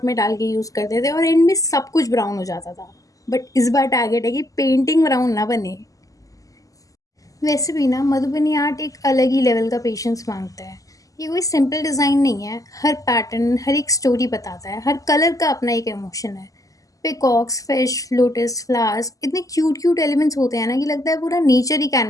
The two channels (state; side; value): late; right; 0.17 ms